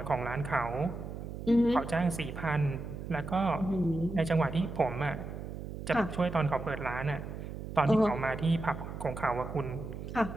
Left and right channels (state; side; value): noise; right; hum, 8 dB below the sound